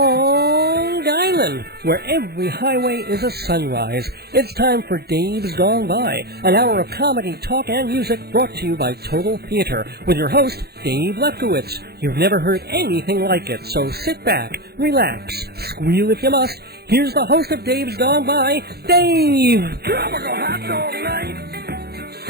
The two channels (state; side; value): late; left; 0.46 ms